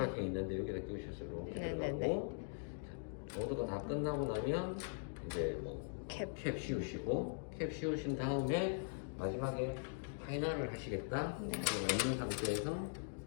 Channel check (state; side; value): silent; right; digital silence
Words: 있는데 여기다 끼우셨어요. 이렇게 네네네. 들어가고 자, 로드가 다 끝나고 나면 이제 뭐 캡. 캡 씌우시고 캡 씌우신 다음에 마지막에 파이널을 하시겠다 네. 없는 상태에서